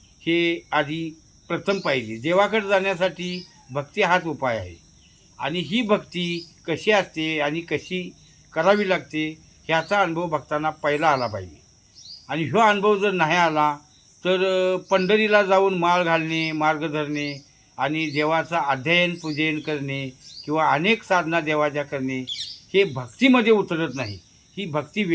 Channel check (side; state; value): both; identical; correlation 1.00